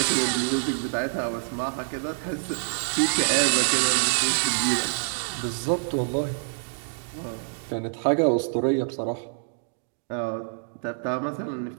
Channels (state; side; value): silent; left; digital silence